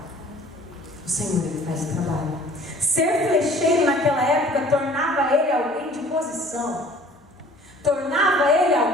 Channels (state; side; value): normal; both; correlation 0.51